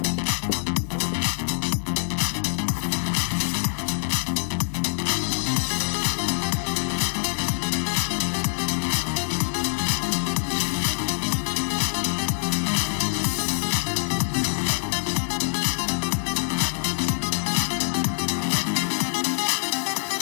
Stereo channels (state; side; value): silent; right; 62 dB below the other